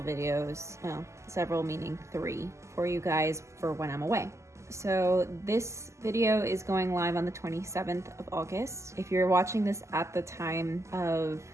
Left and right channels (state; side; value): late; left; 0.14 ms